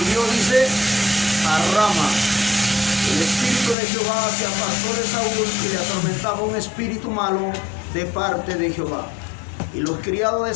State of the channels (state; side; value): drops out; right; at 3.8 s